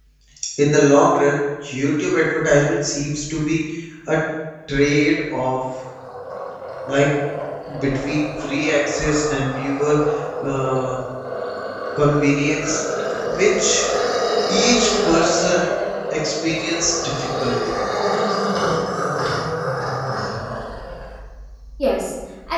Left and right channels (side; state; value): both; identical; correlation 1.00